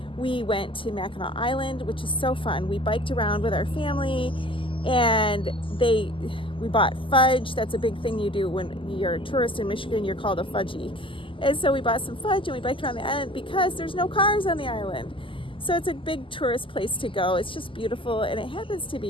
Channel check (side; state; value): right; late; 0.25 ms